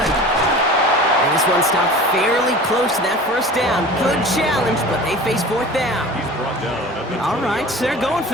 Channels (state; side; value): normal; both; correlation 0.39